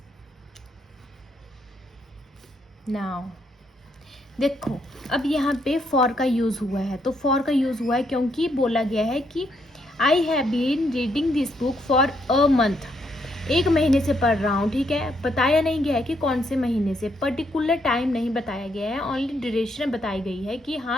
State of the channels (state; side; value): normal; both; correlation 0.75